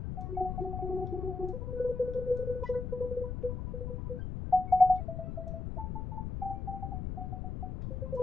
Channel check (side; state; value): left; noise; rumble, 4 dB below the sound